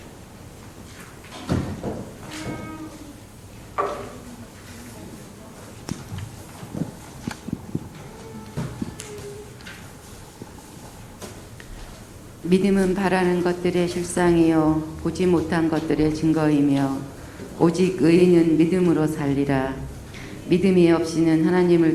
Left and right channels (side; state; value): both; identical; correlation 1.00